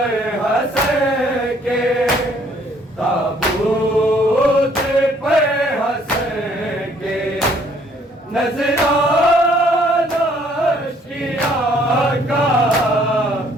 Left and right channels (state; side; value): normal; both; correlation 0.63